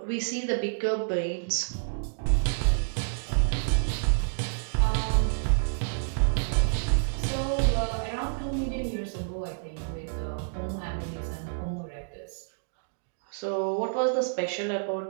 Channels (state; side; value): silent; left; digital silence